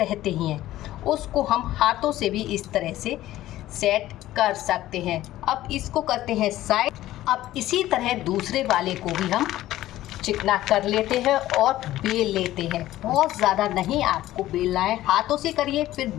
ही हैं। उसको हम हाथों से भी इस तरह से सेट कर सकते हैं। अब इसको करते हैं साइड। अब इसी तरह दूसरे वाले को भी हम चिकना कर लेते हैं और बेल लेते हैं। बहुत ज़्यादा नहीं आपको बेलना है, हाथों से करिए फिर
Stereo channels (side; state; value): right; quieter; 14.9 dB